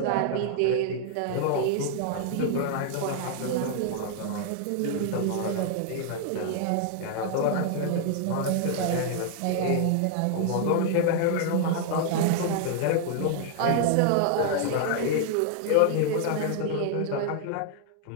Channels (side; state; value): both; different; correlation 0.00